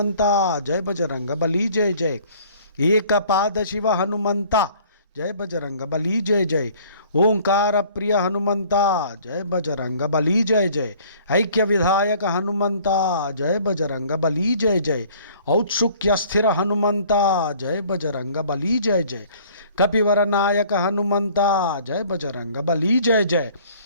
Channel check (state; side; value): inverted; both; correlation -0.54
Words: जय बजरंग बली जय जय। एक पाद शिव हनुमंता जय बजरंग बली जय जय। ओंकार प्रिय हनुमंता जय बजरंग बली जय जय। ऐक्य विधायक हनुमंता जय बजरंग बली जय जय। औत्सुक्य स्थिर हनुमंता जय बजरंग बली जय जय। कपिवर नायक हनुमंता जय बजरंग बली जय जय।